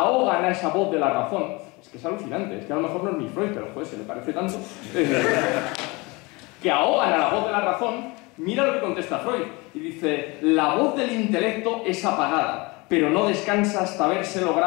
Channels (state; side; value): quieter; right; 25.6 dB